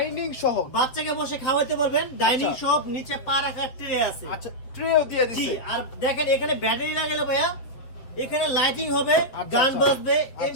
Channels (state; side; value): late; right; 7.9 ms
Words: সহ। বাচ্চাকে বসে খাওয়াতে পারবেন। ডাইনিং আচ্ছা। সহ, নিচে পা রাখার ট্রে আছে। আচ্ছা, ট্রেও দিয়ে জি, দিছে। আর দেখেন এখানে ব্যাটারি লাগালে ভাইয়া, এখানে লাইটিং হবে, আচ্ছা, গান আচ্ছা। বাজবে, আচ্ছা।